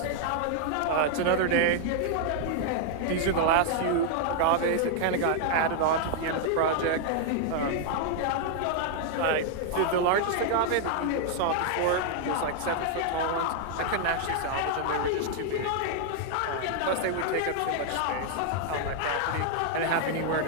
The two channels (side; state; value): both; different; correlation -0.01